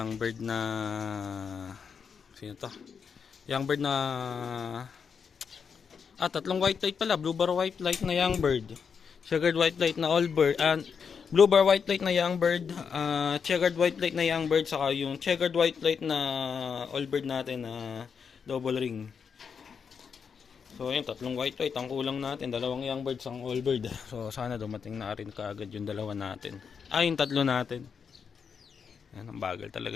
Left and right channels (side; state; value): right; quieter; 6.3 dB